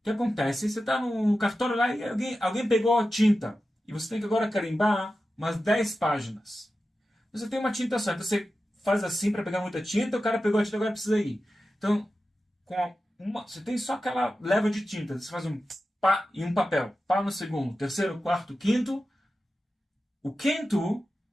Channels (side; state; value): both; normal; correlation 0.93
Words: que acontece? Você está no cartório lá e alguém pegou a tinta, e você tem que agora carimbar umas 10 páginas. Você tem uma tinta só, então você faz assim para pegar muita tinta, o cara pegou a tinta, agora precisa ir. Então, você tem só aquela leva de tinta, você faz um pá e um papel, pá no segundo, terceiro, quarto, quinto. O quinto